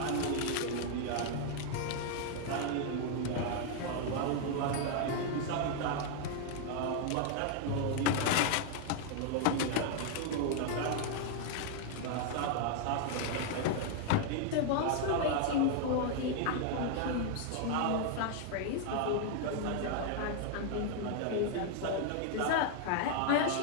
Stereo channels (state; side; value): different; both; correlation 0.00